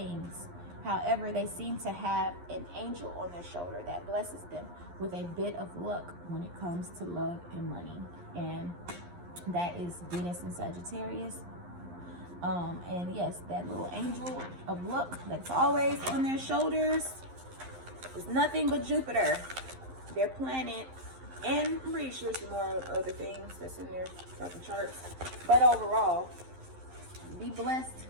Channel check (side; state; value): left; late; 11 ms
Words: However, they seem to have an angel on their shoulder that blesses them with a bit of luck when it comes to love and money. And that is Venus in Sagittarius. And yes, that little angel of luck that's always on their shoulders is nothing but Jupiter, their planet, and I'm pretty sure some more other things that's in their fucking charts. But overall, be blessed